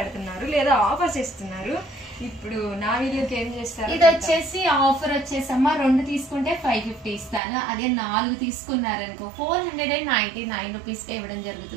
లేదా ఆఫర్స్ ఇస్తున్నారు. ఇప్పుడు నా వీడియోకి ఏం చేస్తారు? ఇది వచ్చేసి ఆఫర్ వచ్చేసమ్మా 2 తీసుకుంటే 550 ఇస్తాను. అదే 4 తీసుకున్నారనుకో 499 రూపీస్ ఇవ్వడం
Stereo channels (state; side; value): drops out; left; at 7.4 s